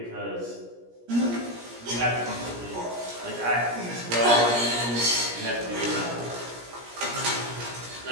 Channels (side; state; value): left; late; 17 ms